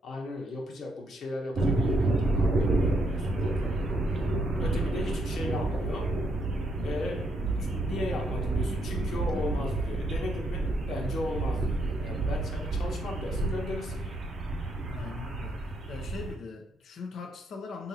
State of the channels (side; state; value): both; normal; correlation 0.75